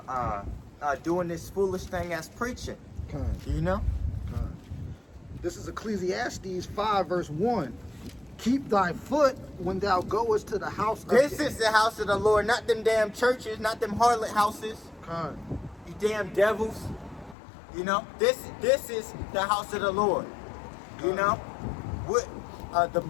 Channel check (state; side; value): drops out; right; at 17.4 s